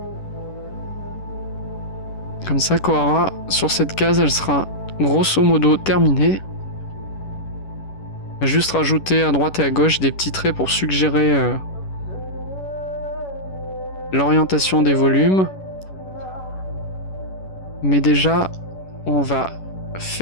Comme ça, Kohara, sur cette case, elle sera grosso modo terminée. On va juste rajouter à droite et à gauche des petits traits pour suggérer l'orientation des volumes. Mais déjà, on va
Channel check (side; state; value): right; late; 11 ms